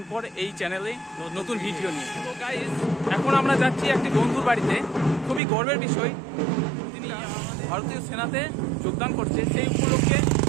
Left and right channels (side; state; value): left; drops out; at 5.4 s